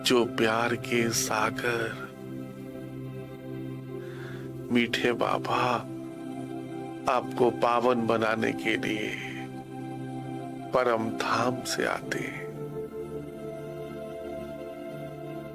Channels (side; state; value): both; identical; correlation 1.00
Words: जो प्यार के सागर। मीठे बाबा, आपको पावन बनाने के लिए परम धाम से आते हैं।